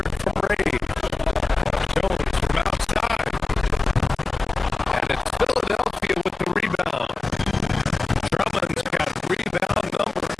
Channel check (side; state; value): right; quieter; 3.5 dB